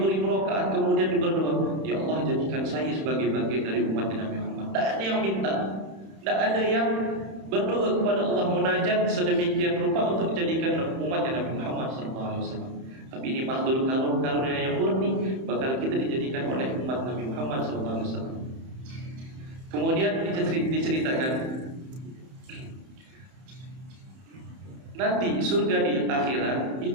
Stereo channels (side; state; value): left; late; 31 ms